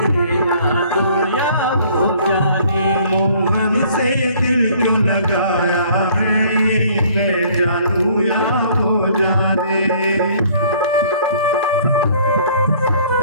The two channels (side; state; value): both; inverted; correlation -0.56